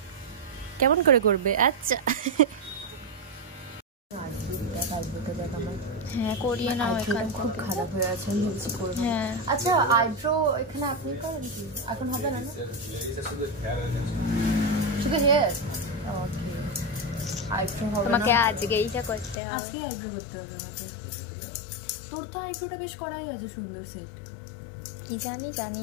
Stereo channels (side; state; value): right; drops out; at 19.4 s